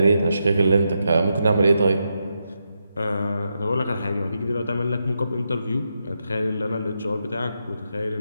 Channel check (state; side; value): inverted; both; correlation -0.84